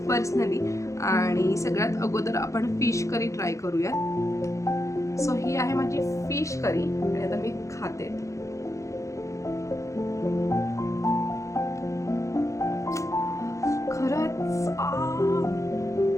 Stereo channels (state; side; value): late; right; 0.15 ms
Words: पर्सनली. आणि सगळ्यात अगोदर आपण फिश करी ट्राय करूयात. सो ही आहे माझी फिश करी आणि आता मी खाते. खरंच